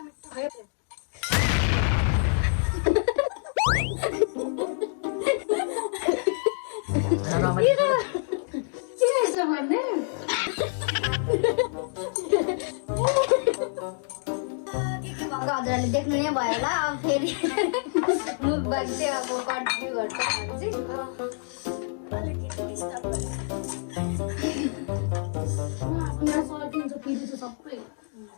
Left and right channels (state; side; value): silent; right; 60 dB below the other